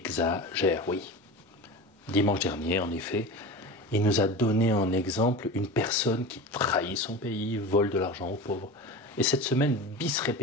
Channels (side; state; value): both; normal; correlation 0.30